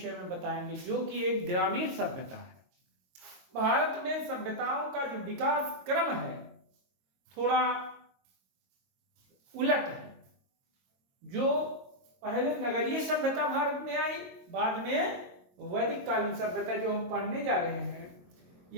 में बताएंगे, जो कि एक ग्रामीण सभ्यता है। भारत में सभ्यताओं का जो विकास क्रम है थोड़ा उलट है। जो पहले नगरीय सभ्यता भारत में आई, बाद में वैदिक कालीन सभ्यता जो हम पढ़ने जा रहे हैं,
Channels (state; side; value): late; left; 22 ms